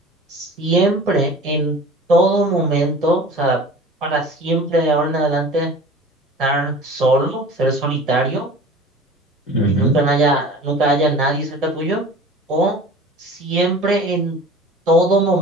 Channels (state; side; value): normal; both; correlation 0.41